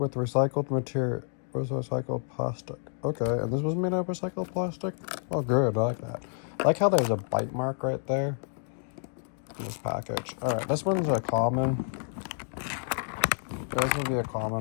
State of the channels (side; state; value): right; silent; 58 dB below the other